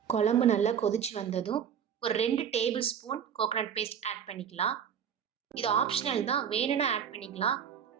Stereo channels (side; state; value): left; quieter; 8.2 dB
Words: குழம்பு நல்லா கொதிச்சு வந்ததும் ஒரு 2 tablespoon coconut paste add பண்ணிக்கலாம். இது ஆப்ஷனல் தான், வேணும்னா ஆட் பண்ணிக்கலாம்,